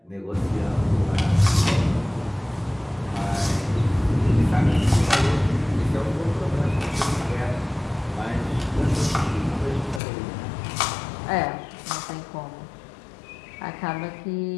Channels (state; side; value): drops out; right; at 10.0 s